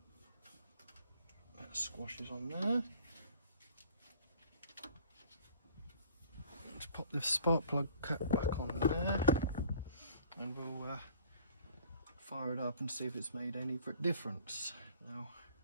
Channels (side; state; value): both; inverted; correlation -0.52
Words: That squashes on there. Let's pop the spark plug cap back on there, and we'll fire it up and see if it's made any difference. Now,